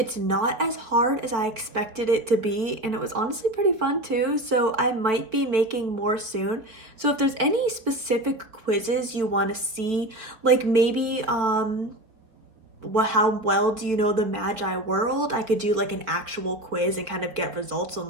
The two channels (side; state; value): left; late; 4.3 ms